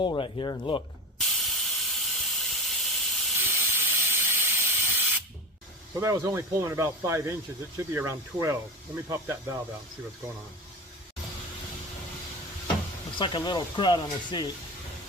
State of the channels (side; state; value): both; normal; correlation 0.25